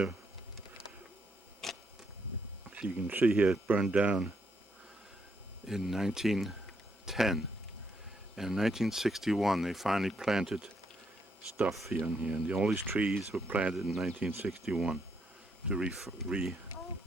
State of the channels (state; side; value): normal; both; correlation 0.76